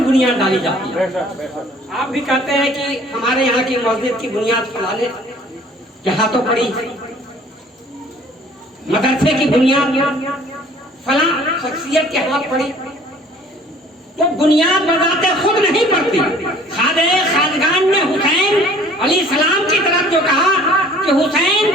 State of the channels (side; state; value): both; normal; correlation 0.53